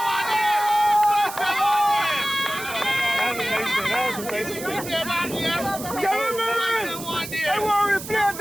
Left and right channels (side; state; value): right; noise; hiss, 11 dB below the sound